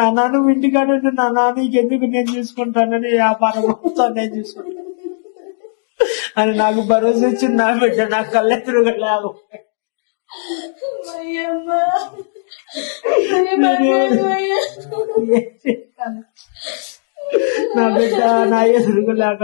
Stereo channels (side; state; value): right; silent; digital silence